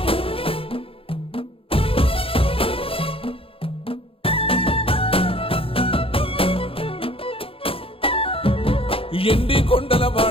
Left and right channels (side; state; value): right; late; 0.27 ms